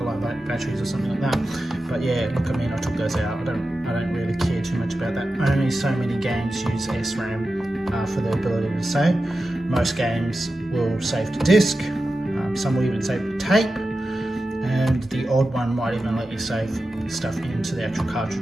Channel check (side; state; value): both; normal; correlation 0.92